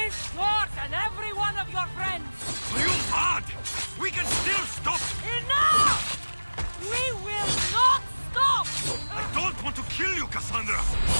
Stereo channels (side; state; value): both; inverted; correlation -1.00